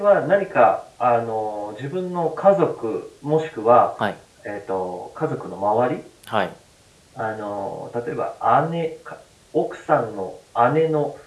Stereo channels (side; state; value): both; identical; correlation 1.00